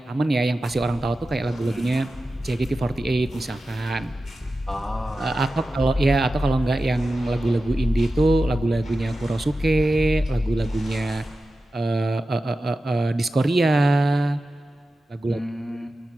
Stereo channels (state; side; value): normal; both; correlation 0.93